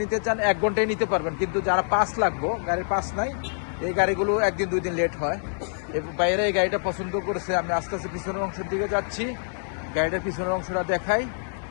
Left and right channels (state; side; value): silent; right; digital silence